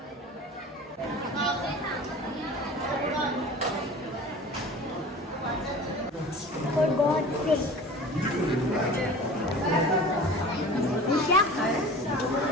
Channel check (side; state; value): both; normal; correlation 0.40